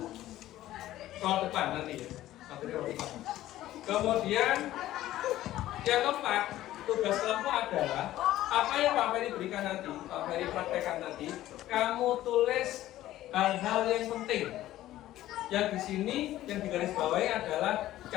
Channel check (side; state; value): right; quieter; 14.4 dB